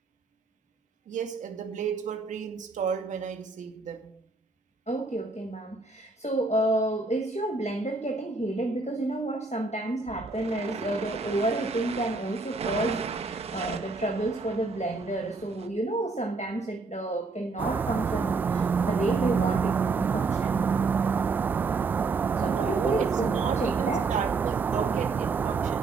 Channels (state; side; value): quieter; left; 3.9 dB